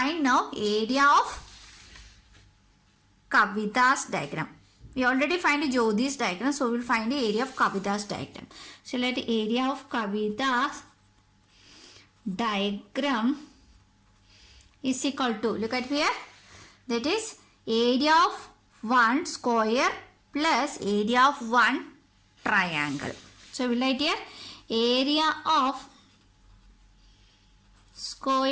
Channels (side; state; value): both; identical; correlation 1.00